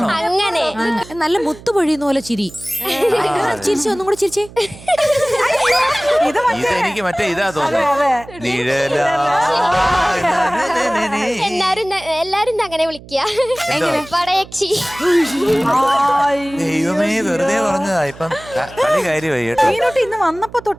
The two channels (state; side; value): noise; right; hum, 19 dB below the sound